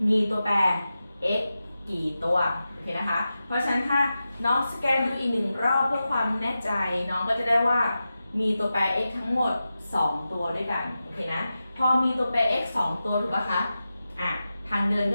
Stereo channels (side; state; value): both; inverted; correlation -0.92